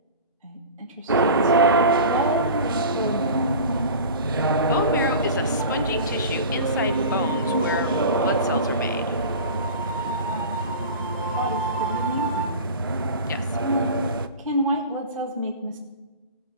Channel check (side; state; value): both; inverted; correlation -0.35